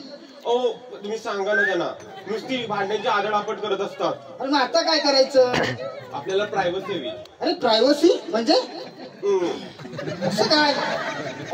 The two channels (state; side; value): identical; both; correlation 1.00